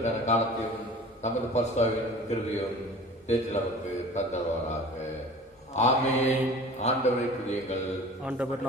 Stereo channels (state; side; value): normal; both; correlation 0.42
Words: காலத்தையும் தமது பரிசுத்தாவின் கிருபையும் தேற்றில் நமக்கு தந்தவராக. ஆமென். ஆண்டவரை துதியுங்கள். ஆண்டவர்